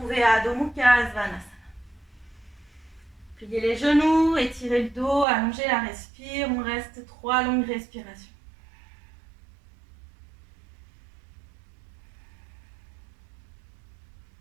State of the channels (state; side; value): drops out; left; at 5.2 s